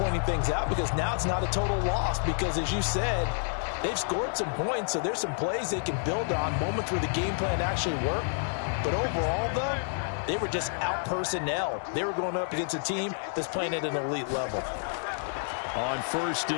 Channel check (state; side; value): silent; right; digital silence